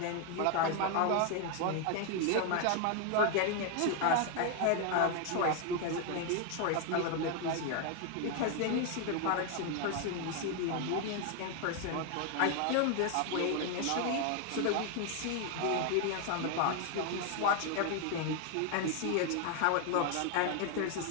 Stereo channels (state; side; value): different; both; correlation 0.01